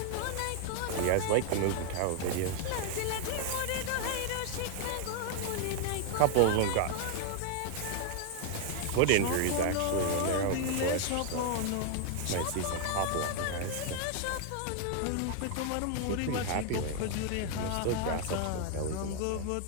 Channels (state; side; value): different; both; correlation 0.00